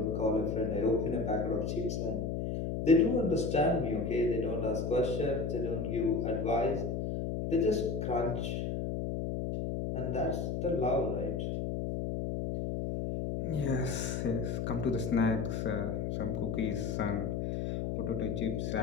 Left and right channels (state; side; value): noise; left; hum, 1 dB below the sound